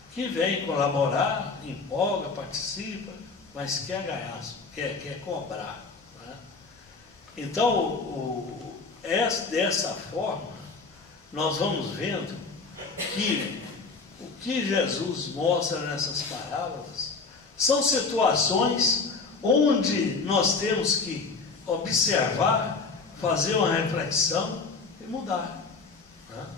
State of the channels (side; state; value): right; quieter; 4.3 dB